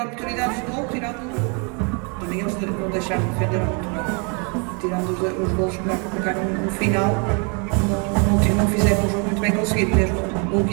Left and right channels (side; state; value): left; quieter; 35.2 dB